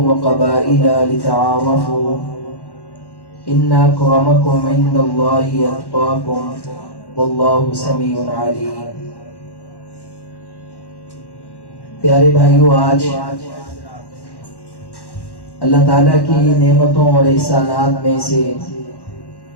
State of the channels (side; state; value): right; late; 1.1 ms